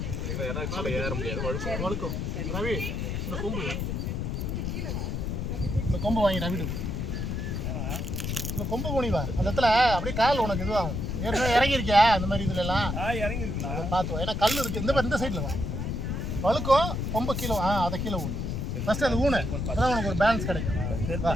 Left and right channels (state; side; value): noise; left; rumble, 2 dB below the sound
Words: சரிங்களா? ஏன்னா மேலே ஏற முடியாது, வழுக்கும். ரவி இந்த கொம்பு வாங்கி ரவிட்டு இந்த கொம்பு போனிவா அந்த இடத்துல அப்படியே கால் உனக்கு இதுவாகும். ஏற்கனவே இறங்கியிருக்கியா அந்த மாதிரி இதுல எல்லாம் இறங்கிருக்கு பார்த்துவோம். ஏன்னா கல் இருக்கு இந்த சைடில் வா வழுக்கும் கொம்பு கீழே அதை கீழே ஊனு ஃபர்ஸ்ட் அது ஊனு அதான் உனக்கு ஒரு பேலன்ஸ் கிடைக்கும்.